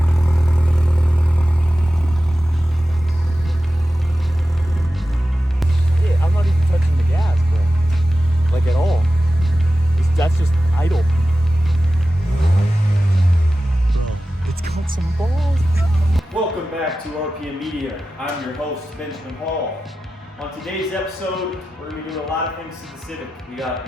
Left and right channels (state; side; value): normal; both; correlation 0.94